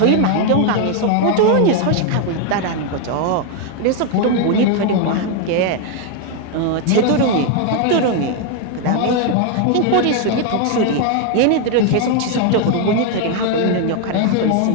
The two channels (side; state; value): both; different; correlation 0.01